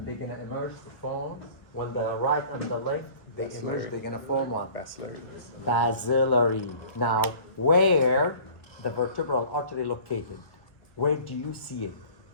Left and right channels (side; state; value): right; late; 1.4 ms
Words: they're gonna emerge to form. When the right and the left, they emerge, they're gonna form what? Basilarity. Now, where the vertebral artery located? Where do you see it